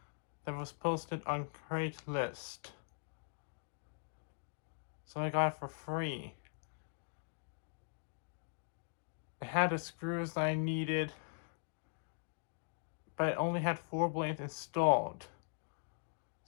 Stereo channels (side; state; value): right; silent; digital silence